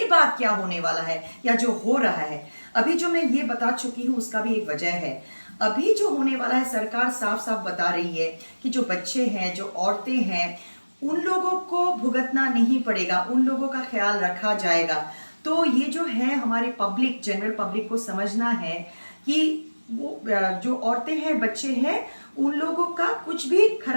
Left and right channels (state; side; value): inverted; both; correlation -1.00